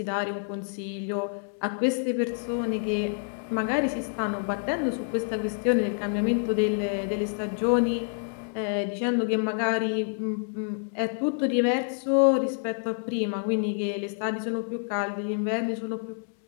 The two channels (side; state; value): right; silent; 59 dB below the other